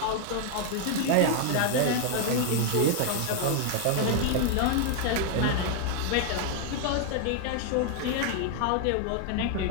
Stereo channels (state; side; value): different; both; correlation 0.00